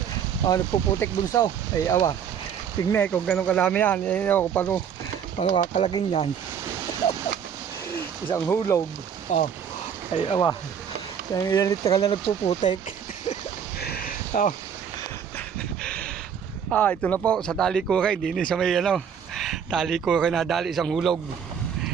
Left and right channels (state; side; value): quieter; left; 7.9 dB